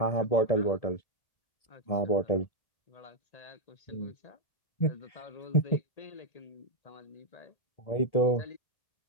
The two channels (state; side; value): late; right; 1.8 ms